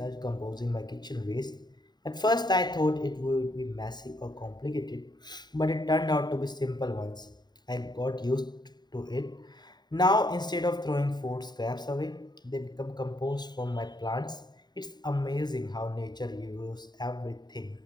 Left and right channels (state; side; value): late; right; 0.20 ms